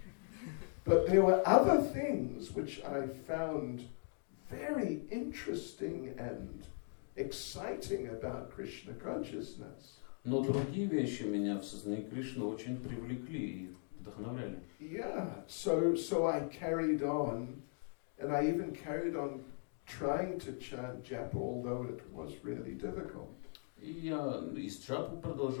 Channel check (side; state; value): right; silent; 52 dB below the other